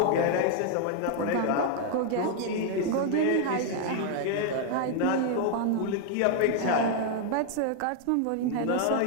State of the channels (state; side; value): different; both; correlation 0.00